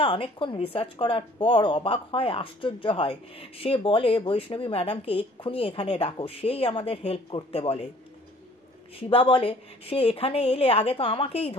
অনেকক্ষণ রিসার্চ করার পর অবাক হয়, আশ্চর্য হয়। সে বলে বৈষ্ণবী ম্যাডামকে এক্ষুনি এখানে ডাকো, সেই আমাদের হেল্প করতে বলে। শিবা বলে সে এখানে এলে আগে তো আমাকেই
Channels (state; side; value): normal; both; correlation 0.55